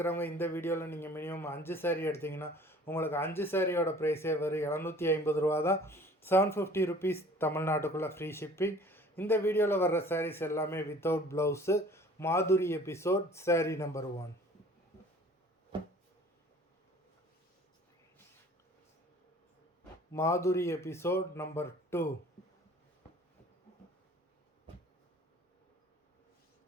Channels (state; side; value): normal; both; correlation 0.49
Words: இந்த வீடியோவில் நீங்கள் மினிமம் 5 சாரீ எடுத்திங்கன்னா உங்களுக்கு 5 சாரியோட ப்ரைஸே வெறும் 750 தான். 750 ருபீஸ், தமிழ்நாட்டுக்குள்ளே ஃப்ரீ ஷிப்பிங். இந்த வீடியோவில் வர்ற சாரீஸ் எல்லாமே வித்தவுட் ப்ளவுஸு. மாதுரி எபிசோட் சாரீ நம்பர் 1. மாதுரி எபிசோட் நம்பர் 2.